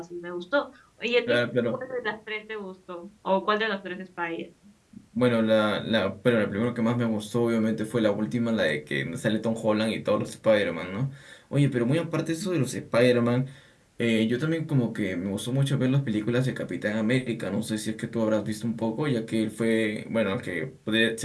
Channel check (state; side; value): identical; both; correlation 1.00